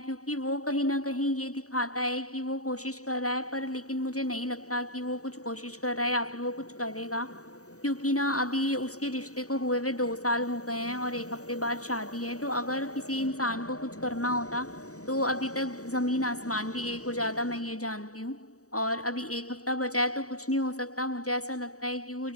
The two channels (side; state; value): right; late; 0.66 ms